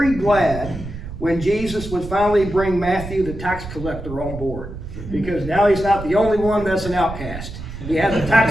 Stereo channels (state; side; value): noise; right; rumble, 10 dB below the sound